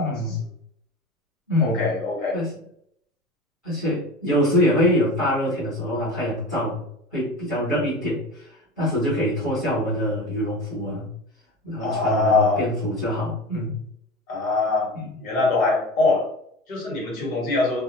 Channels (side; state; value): both; normal; correlation 0.32